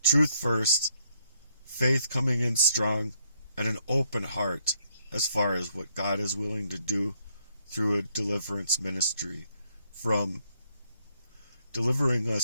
Truth first, faith coming in strong, and an open heart as far as what God is willing to do through a deliverance ministry, from delivering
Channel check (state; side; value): inverted; both; correlation -0.72